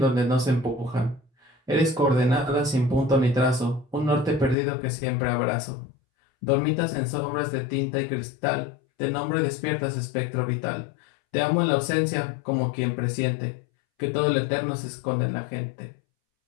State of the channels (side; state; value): right; drops out; at 4.5 s